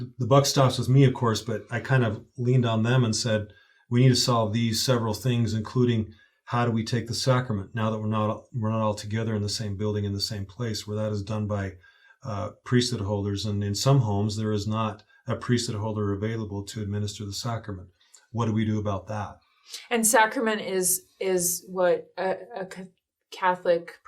the buck stops with me, of course, but I kind of leaned on them and said, we need to solve these several things, including how do we take the sacrament now that we're not all together in the same building, in the same place, where that is done by priesthood holders. And in some homes, there is not a priesthood holder available to administer the sacrament. What do we do about that? And sacrament is what a Catholic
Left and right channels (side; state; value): both; identical; correlation 1.00